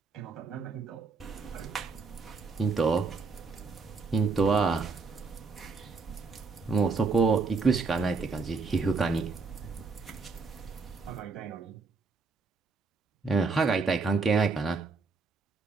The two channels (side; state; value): left; quieter; 4.2 dB